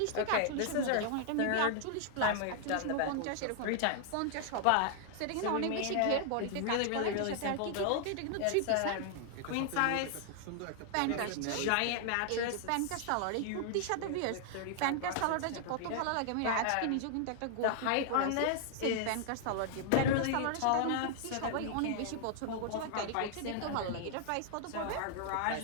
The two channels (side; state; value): both; different; correlation 0.00